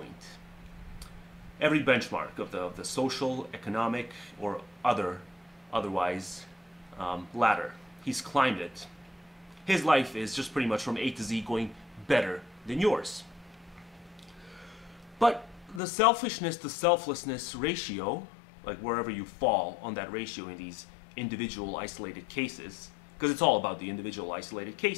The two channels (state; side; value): drops out; right; at 15.8 s